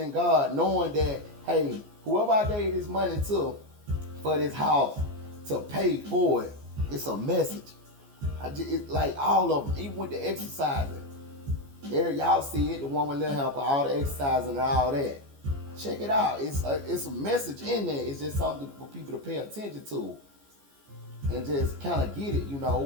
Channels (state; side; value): late; left; 14 ms